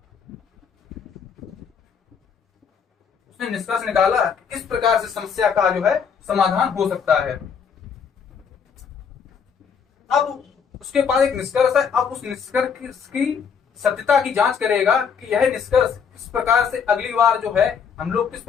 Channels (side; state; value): right; quieter; 6.6 dB